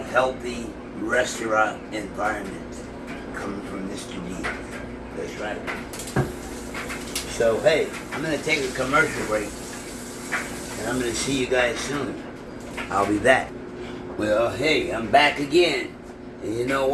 healthy restaurant environment coming from Mr. D. That's right. So hey, I'm gonna take a commercial break, and I'm gonna see you guys soon. I'll be back. Well, hey, I'm back again. And you know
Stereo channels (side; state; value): both; identical; correlation 1.00